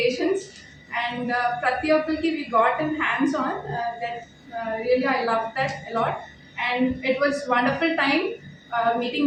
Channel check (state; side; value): identical; both; correlation 1.00